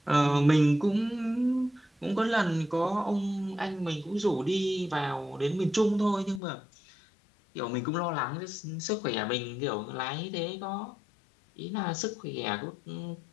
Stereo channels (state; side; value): drops out; right; at 6.4 s